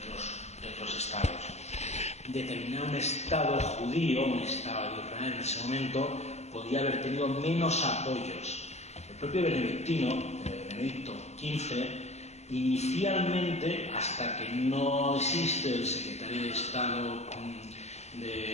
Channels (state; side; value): late; right; 0.32 ms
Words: otros estados. Determinar un estado judío, un estado de Israel en ese momento, podía haber tenido menos apoyos. El propio Benedicto XV, inicialmente, hasta que no existe el secretario de Estado